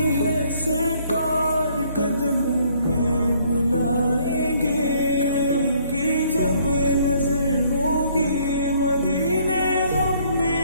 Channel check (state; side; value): inverted; both; correlation -0.64